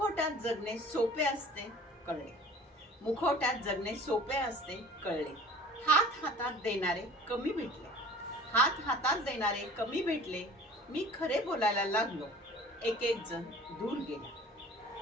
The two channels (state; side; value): normal; both; correlation 0.46